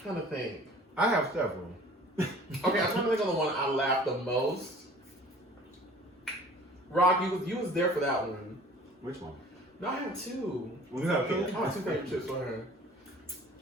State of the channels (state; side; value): normal; both; correlation 0.48